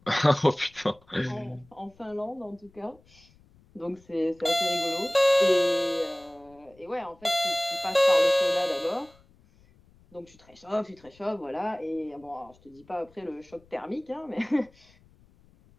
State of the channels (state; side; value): noise; left; rumble, 29 dB below the sound